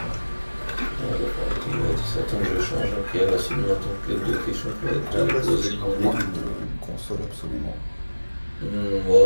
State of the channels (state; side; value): inverted; both; correlation -1.00